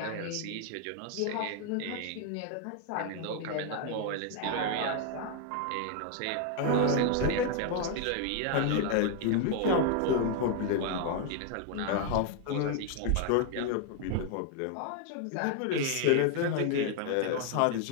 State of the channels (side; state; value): both; different; correlation 0.00